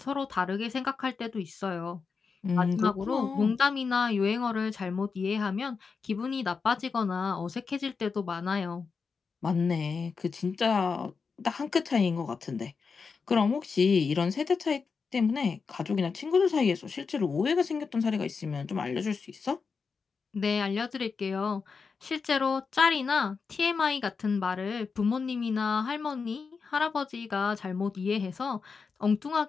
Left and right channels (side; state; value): right; quieter; 5.2 dB